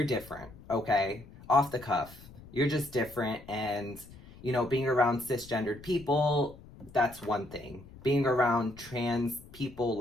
different, okay? Off the cuff. You're just different, and, you know, being around cisgendered people, that's one thing. Being around trans people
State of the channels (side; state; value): left; noise; rumble, 19 dB below the sound